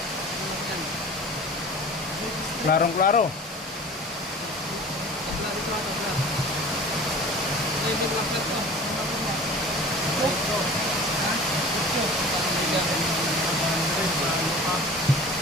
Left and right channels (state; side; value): normal; both; correlation 0.41